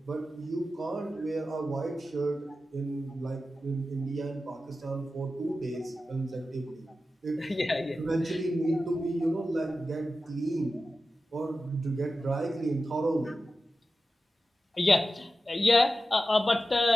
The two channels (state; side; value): normal; both; correlation 0.92